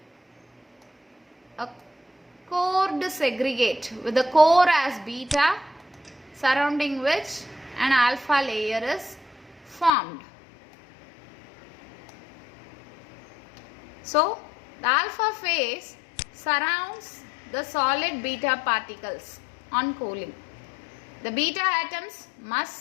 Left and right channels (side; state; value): right; drops out; at 9.9 s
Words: a cored segregate with the core as beta, surrounding which an alpha layer is formed. So the alpha phase surrounds the solid beta particles on cooling. The beta atoms